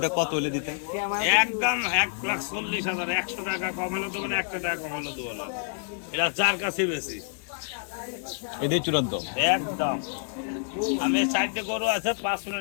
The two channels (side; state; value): right; silent; digital silence